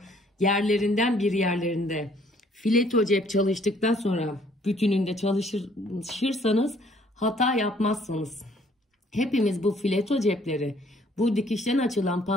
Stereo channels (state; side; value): normal; both; correlation 0.61